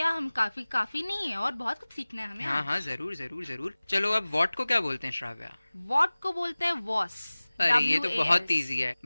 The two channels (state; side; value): inverted; both; correlation -1.00